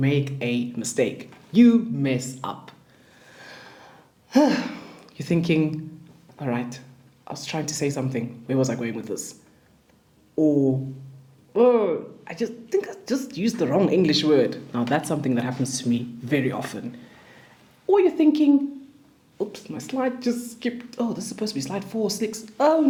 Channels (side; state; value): both; identical; correlation 1.00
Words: a mistake. You mess up. You're thinking, all right, I was trying to say something. Where was I going with this? Or, oh, I just think I just used the wrong English word. Now that's something that happens to me very often. Or you're thinking, oops, my slide just skipped. Oh, this is supposed to be slide 4, 6. Oh